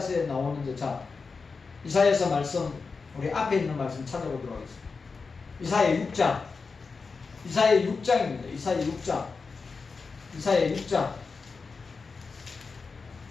나오는 데, 자, 이사야서 말씀, 우리 앞에 있는 말씀 찾아보도록 하겠습니다. 이사야 6장. 이사야 6장입니다. 이사야 6장.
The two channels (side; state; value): right; quieter; 4.7 dB